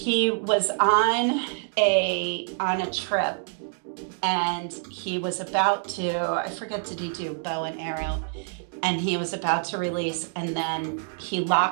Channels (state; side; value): silent; left; digital silence